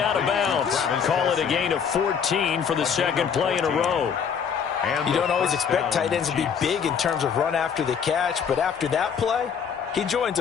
of bounds. Call it a gain of 14 for the second play in a row. You don't always expect tight ends to be big in terms of run after the catch, but after that play, he joins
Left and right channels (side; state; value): right; quieter; 7.1 dB